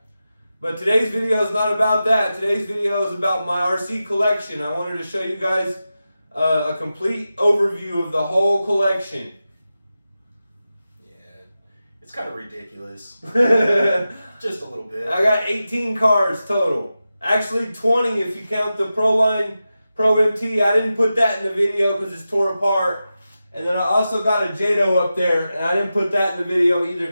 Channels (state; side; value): inverted; both; correlation -0.92